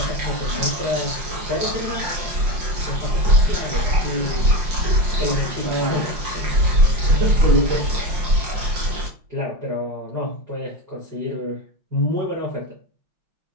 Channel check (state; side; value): late; left; 5.6 ms